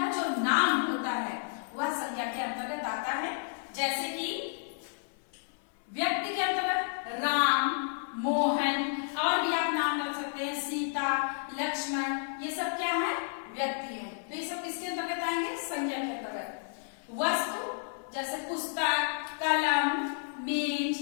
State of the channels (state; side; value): silent; right; 57 dB below the other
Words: जो नाम होता है वह संज्ञा के अंतर्गत आता है। जैसे कि व्यक्ति के अंतर्गत राम, मोहन, और भी आप नाम रख सकते हैं, सीता, लक्ष्मण, ये सब क्या है? व्यक्ति है। तो ये सब किसके अंतर्गत आएंगे? संज्ञा के अंतर्गत। वस्तु जैसे पुस्तक, कलम, मेज,